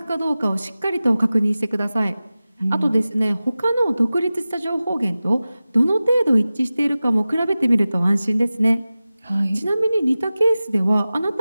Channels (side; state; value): both; inverted; correlation -0.96